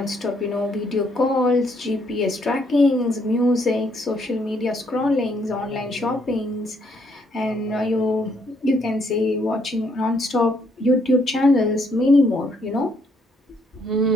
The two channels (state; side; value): normal; both; correlation 0.71